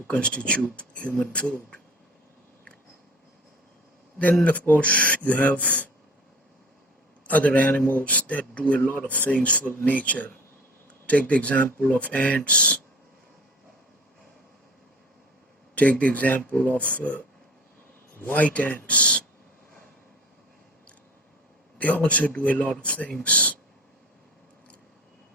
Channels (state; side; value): normal; both; correlation 0.43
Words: constitute human food. Then, of course, you have other animals that do a lot of things for nature. Take the example of ants. Take the example of white ants. they also do a lot of things.